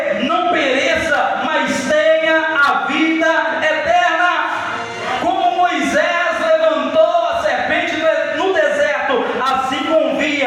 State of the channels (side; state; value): both; identical; correlation 1.00